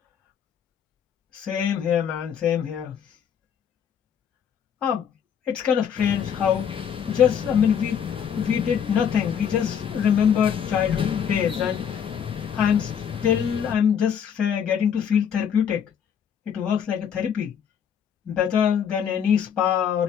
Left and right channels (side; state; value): right; quieter; 8.1 dB